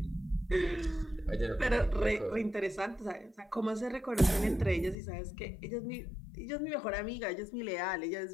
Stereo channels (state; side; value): drops out; right; at 5.0 s